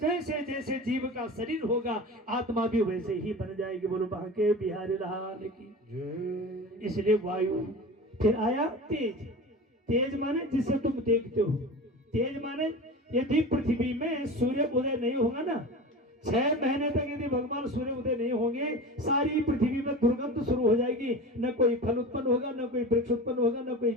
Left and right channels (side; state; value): both; normal; correlation 0.32